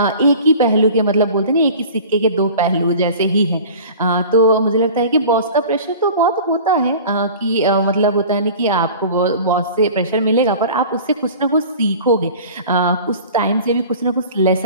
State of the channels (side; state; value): both; inverted; correlation -0.41